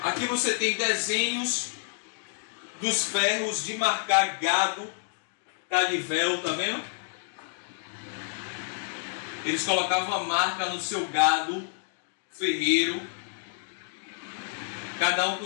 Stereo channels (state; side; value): silent; right; digital silence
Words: Aqui você tem desenhos dos ferros de marcar gado, Cadivel, tá vendo? Eles colocavam a marca no seu gado ferreiro, cada um